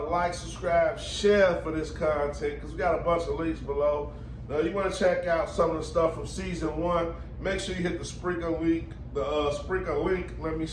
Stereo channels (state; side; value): identical; both; correlation 1.00